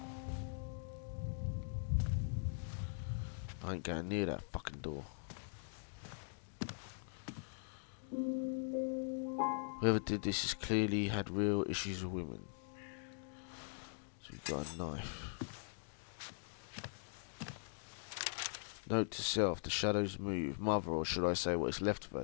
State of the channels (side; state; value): right; silent; digital silence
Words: I ain't going near that fucking door. Whoever did this has clearly had real issues with women. So we've got a knife. Note to self, the shadows move. Mother, or should I say what is left of her,